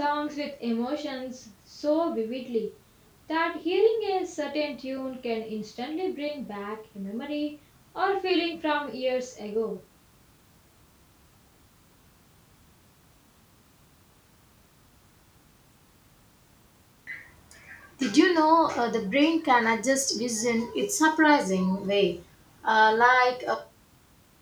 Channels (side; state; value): both; identical; correlation 1.00